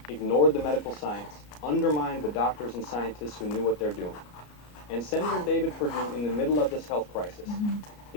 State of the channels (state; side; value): late; right; 34 ms